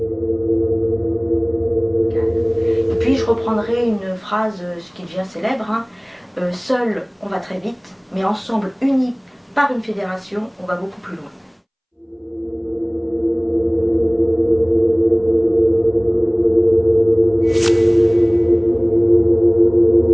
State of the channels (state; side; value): identical; both; correlation 1.00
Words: Et puis je reprendrai une phrase qui devient célèbre, hein. Seul on va très vite, mais ensemble, unis par une fédération, on va beaucoup plus loin.